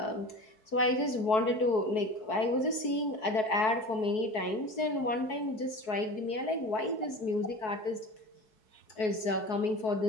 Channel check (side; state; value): right; late; 4.6 ms